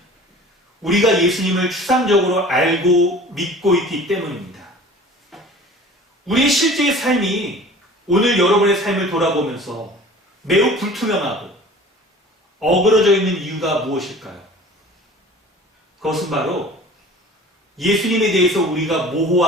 우리가 예수님을 추상적으로 알고 믿고 있기 때문입니다. 우리의 실제의 삶이 오늘 여러분의 삶을 돌아보면서 매우 불투명하고 어그러져 있는 이유가 무엇일까요? 그것은 바로 예수님에 대해서 우리가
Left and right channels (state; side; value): normal; both; correlation 0.44